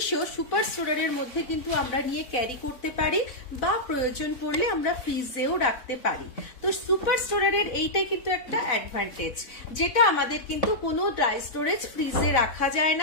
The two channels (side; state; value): right; late; 4.0 ms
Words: সুপার স্টোরারের মধ্যে কিন্তু আমরা নিয়ে ক্যারি করতে পারি, বা প্রয়োজন পড়লে আমরা ফ্রিজেও রাখতে পারি। তো সুপার স্টোরারের এইটাই কিন্তু একটা অ্যাডভান্টেজ, যেটা আমাদের কিন্তু কোনো ড্রাই স্টোরেজ ফ্রিজে রাখা যায়